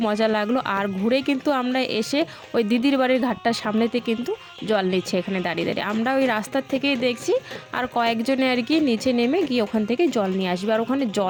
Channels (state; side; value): identical; both; correlation 1.00